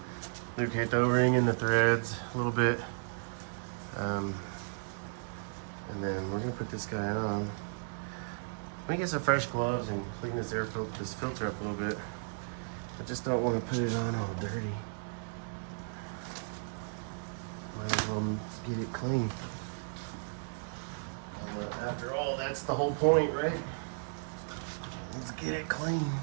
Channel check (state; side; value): silent; left; digital silence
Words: Lubricate the O-ring and the threads a little bit, and then we're gonna put this guy on. Let me get some fresh gloves and clean this filter up a little bit. I just don't want to put it on all dirty. Might as well get it clean. After all, that's the whole point, right? Let's get it clean.